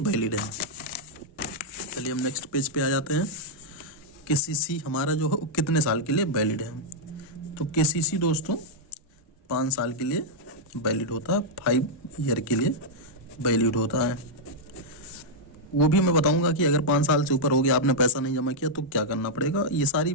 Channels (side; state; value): both; normal; correlation -0.05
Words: है। चलिए हम नेक्स्ट पेज पे आ जाते हैं। केसीसी हमारा जो है कितने साल के लिए वैलिड है। तो केसीसी दोस्तों 5 साल के लिए वैलिड होता है, 5 ईयर के लिए वैलिड होता है। वो भी मैं बताऊंगा कि अगर 5 साल से ऊपर हो गया, आपने पैसा नहीं जमा किया तो क्या करना पड़ेगा। ये सारी